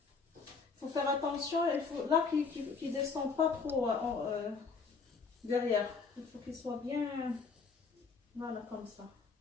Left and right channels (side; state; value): right; quieter; 4.9 dB